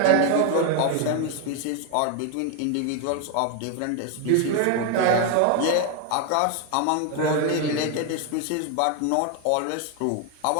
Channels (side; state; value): both; different; correlation 0.01